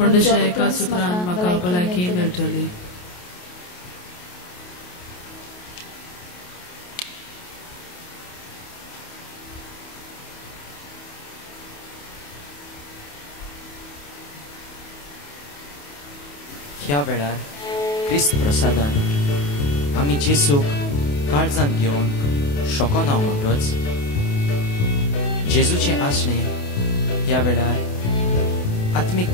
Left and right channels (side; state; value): right; late; 28 ms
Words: दुसऱ्या एका सुत्रान म्हाका भलायकी मेळटली. ह्या वेळार क्रिस्त प्रसादान आमी जेसूक काळजांत घेवन शोकोन हांव म्हणटोच जेजूचें आसणें ह्या वेळार आत्मीक